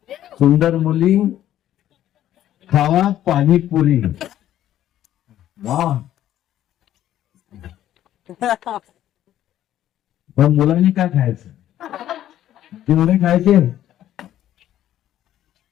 सुंदर मुली खावा पाणीपुरी. वा, पण मुलांनी काय खायचं, तेवढे खायचे.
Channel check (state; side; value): quieter; right; 12.2 dB